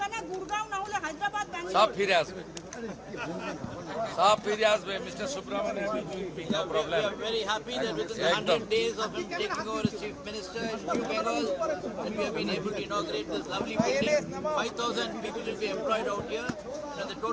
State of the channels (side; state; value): both; identical; correlation 1.00